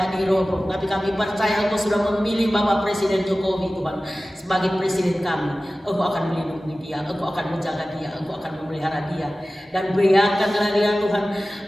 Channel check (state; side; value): normal; both; correlation 0.96